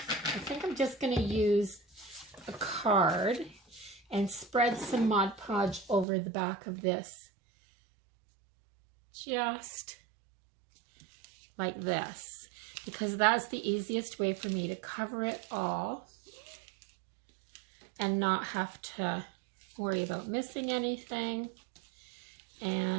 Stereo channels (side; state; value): left; drops out; at 6.1 s